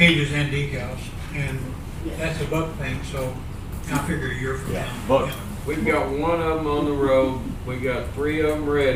and decals, and that's a buck thing, so I figure a year from Yeah, now. but- yeah. We've got one of them on the road, we got 3 of them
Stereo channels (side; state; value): both; identical; correlation 1.00